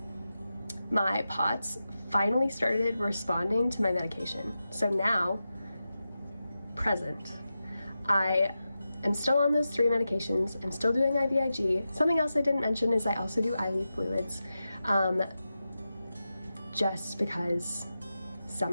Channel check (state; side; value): inverted; both; correlation -0.91